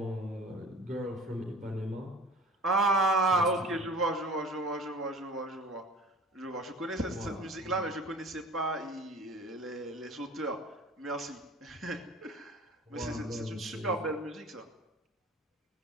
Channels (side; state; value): both; normal; correlation 0.43